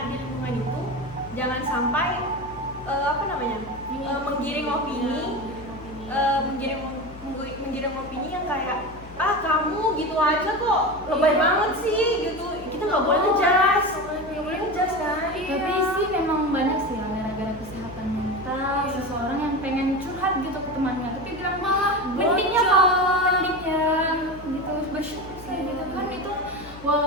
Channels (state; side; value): normal; both; correlation 0.25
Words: di lingkungan itu jangan sampai apa namanya, menggiring opini, menggiring opini yang kayak kamu gitu aja kok lebay banget sih gitu. Kita nggak boleh ngejudge, nggak boleh ngejudge kan. Tapi sih memang banyak sih yang gara-gara kesehatan mental seseorang yang pengen curhat gitu ke temannya, tapi bilang malah mendingnya gitu bersyukur sih gitu kan. Itu